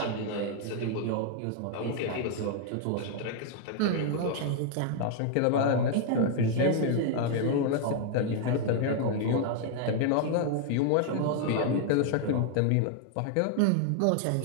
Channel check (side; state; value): both; different; correlation 0.00